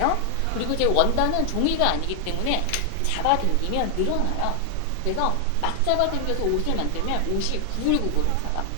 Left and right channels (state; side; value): different; both; correlation 0.00